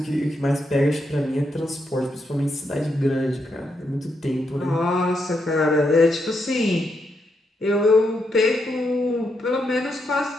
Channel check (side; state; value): both; normal; correlation 0.81